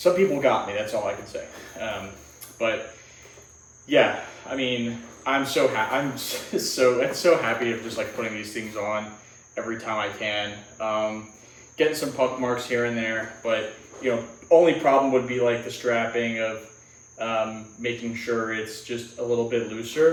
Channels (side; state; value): both; identical; correlation 1.00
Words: people got me. That's all I can say. But yeah, I mean, I'm so happy. I'm so happy of just like putting these things on every time I can. Getting some puck marks here and there, but only problem would be like the strapping of making sure it's just a little bit